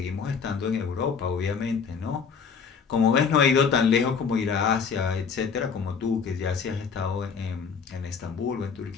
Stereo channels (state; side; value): quieter; right; 6.1 dB